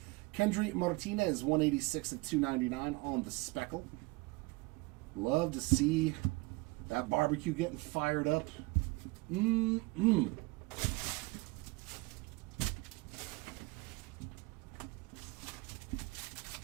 Kendry Martinez, 186 of 299 on the speckle. Love to see that barbecue getting fired up.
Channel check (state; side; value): quieter; left; 24.5 dB